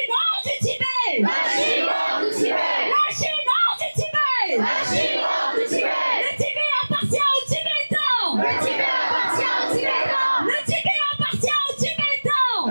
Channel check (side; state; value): both; inverted; correlation -1.00